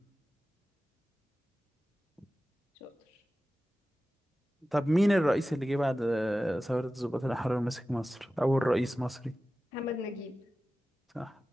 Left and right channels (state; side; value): normal; both; correlation 0.95